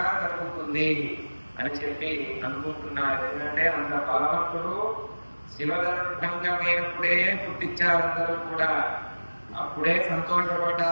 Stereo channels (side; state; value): both; inverted; correlation -1.00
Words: జరుగుతుంది అని చెప్పి అనుకుంటున్నారు. ఎందుకంటే అంత బలవంతుడు శివధనుర్భంగమైనప్పుడే పుట్టించారందరూ కూడా. అప్పుడే